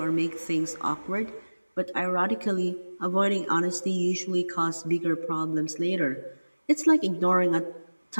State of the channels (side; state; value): both; inverted; correlation -1.00